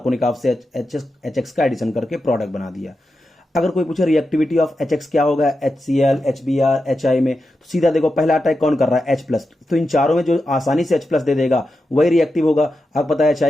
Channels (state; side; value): normal; both; correlation 0.89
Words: से HX का एडिशन करके प्रोडक्ट बना दिया। अगर कोई पूछे रिएक्टिविटी ऑफ HX क्या होगा, HCl, HBr, HI में, तो सीधा देखो पहला अटैक कौन कर रहा है, H प्लस, तो इन चारों में जो आसानी से H प्लस दे देगा वही रिएक्टिव होगा। आपको पता है